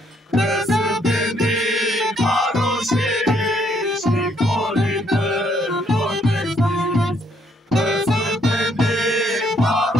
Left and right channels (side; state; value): both; normal; correlation 0.69